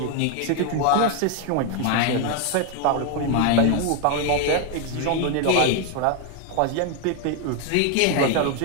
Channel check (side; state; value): both; different; correlation 0.01